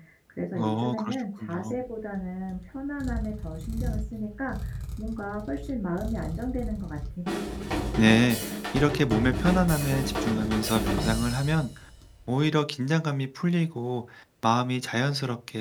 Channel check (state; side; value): identical; both; correlation 1.00